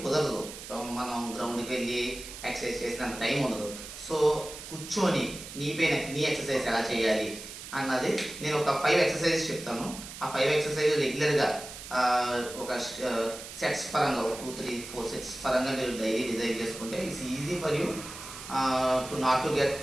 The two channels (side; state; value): right; noise; hiss, 12 dB below the sound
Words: కుదరదు, మనం గ్రౌండ్కి వెళ్ళి ఎక్సర్సైజ్ చేసినంత టైం ఉండదు. సో కూర్చొని నీ ఎక్సర్సైజ్ ఎలా చేయాలి అన్నది నేను ఒక 5 ఎక్సర్సైజెస్ చెప్తాను. ఆ 5 ఎక్సర్సైజ్ రెగ్యులర్గా ఒక సెట్స్ పరంగా 2, 3, 4 సెట్స్ పరంగా మీరు డైలీ డిజైన్ చేసుకుంటే it's easy for you to not to get